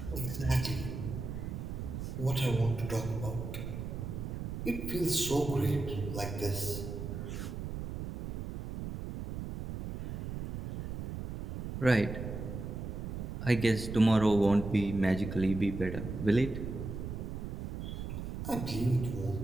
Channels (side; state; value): right; noise; rumble, 6 dB below the sound